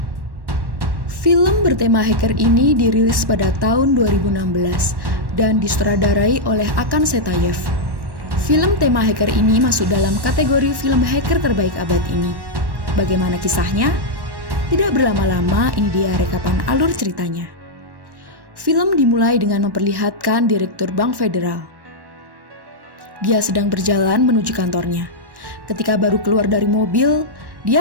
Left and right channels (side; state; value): left; late; 1.1 ms